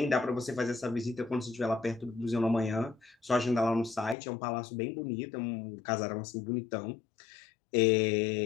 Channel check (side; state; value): right; drops out; at 4.2 s